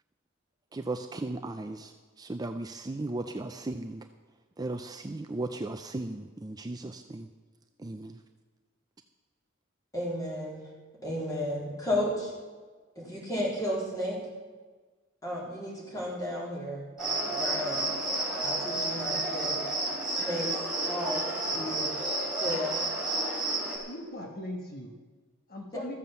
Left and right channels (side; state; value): both; normal; correlation 0.36